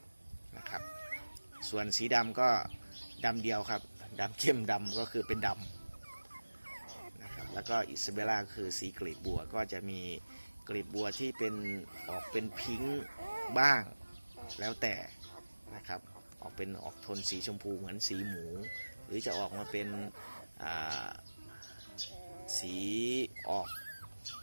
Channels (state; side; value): inverted; both; correlation -1.00